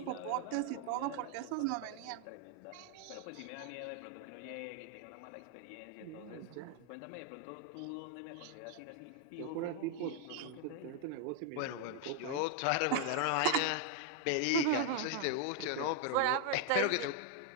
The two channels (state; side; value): different; both; correlation 0.00